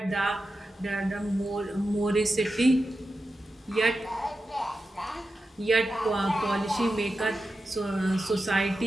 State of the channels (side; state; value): both; normal; correlation 0.91